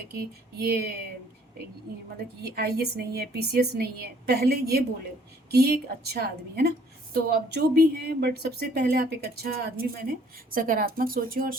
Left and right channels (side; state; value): both; normal; correlation 0.60